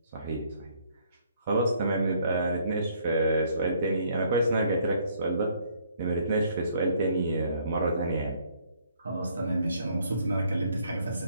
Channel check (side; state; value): both; inverted; correlation -0.65